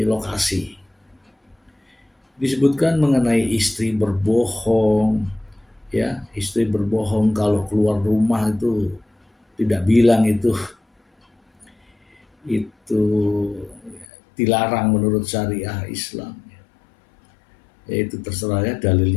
lokasi. Disebutkan mengenai istri berbohong, ya, istri berbohong kalau keluar rumah itu tidak bilang itu dilarang menurut syariah Islam. Ya, itu terserah, ya,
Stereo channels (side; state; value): right; drops out; at 14.1 s